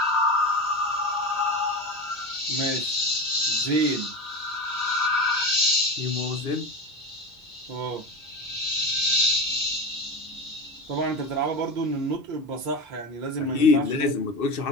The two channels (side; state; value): both; normal; correlation 0.24